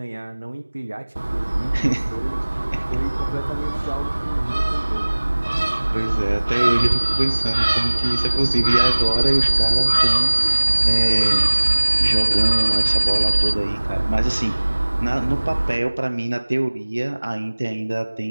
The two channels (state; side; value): inverted; both; correlation -1.00